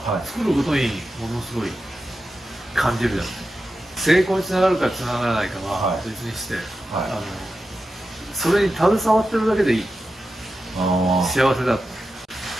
い作ることにものすごい感じるじゃない。成功につながるかつながらないかははい別にして、はそれに携わってるだけでいい。い。あ幸せだ。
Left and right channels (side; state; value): both; normal; correlation 0.91